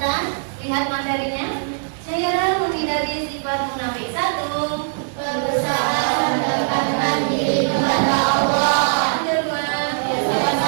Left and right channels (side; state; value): left; silent; digital silence